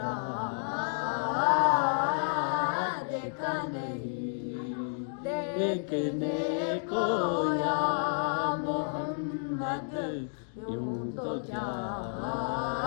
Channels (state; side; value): silent; right; digital silence